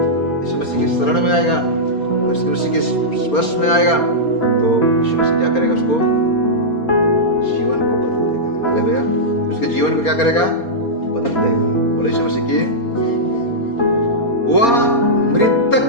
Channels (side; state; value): right; late; 4.3 ms